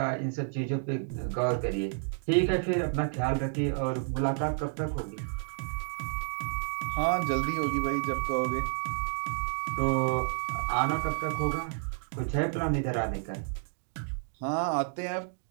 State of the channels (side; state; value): left; silent; digital silence